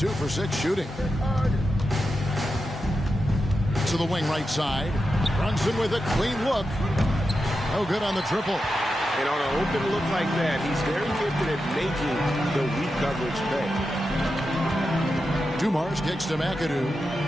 for 6 shooting. To the wing right side. Brunson with a clean look. No good on the triple. And on an open look like that, he's very gifted at making the weak coverage pay. Dumars kicks to McAdoo.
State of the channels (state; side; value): normal; both; correlation 0.89